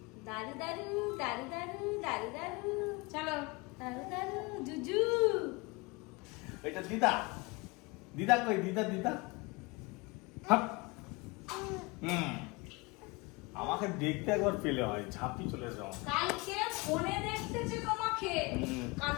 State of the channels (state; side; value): quieter; right; 26.0 dB